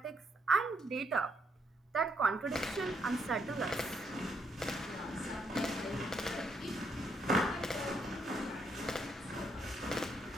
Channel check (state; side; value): normal; both; correlation 0.74